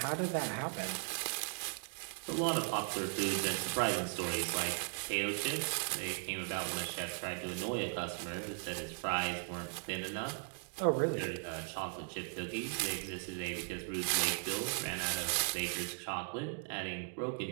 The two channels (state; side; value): silent; left; 53 dB below the other